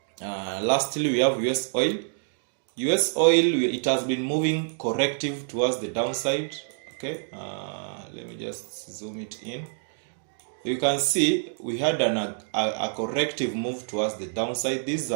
Lastly, we have US oil. US oil, it has been moving corrective towards the downside. Okay, let me just zoom it in. You can see we had a corrective move towards the downside. This is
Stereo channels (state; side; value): silent; left; 60 dB below the other